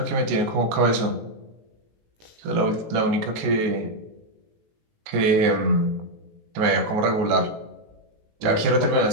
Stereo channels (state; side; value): late; left; 18 ms